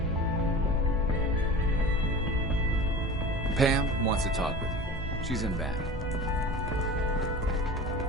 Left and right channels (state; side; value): normal; both; correlation 0.35